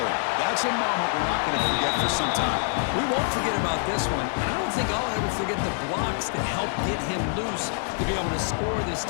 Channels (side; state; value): right; silent; 59 dB below the other